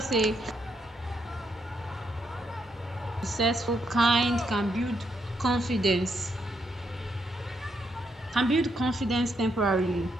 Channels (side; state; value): both; normal; correlation 0.78